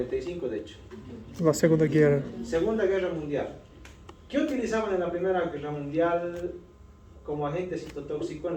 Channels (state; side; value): identical; both; correlation 1.00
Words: de hecho. La Segunda Guerra. Segunda Guerra Mundial. ¿Qué utilizaban en la Primera Guerra Mundial como agente citotóxico en